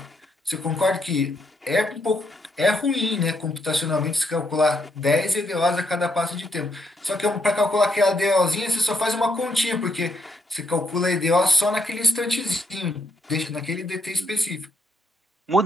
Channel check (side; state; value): both; normal; correlation 0.76